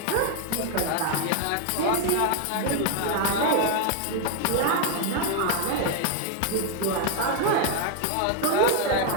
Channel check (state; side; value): different; both; correlation 0.01